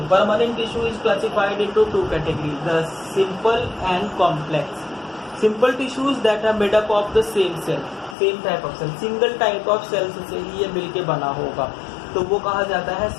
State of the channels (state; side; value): drops out; right; at 8.2 s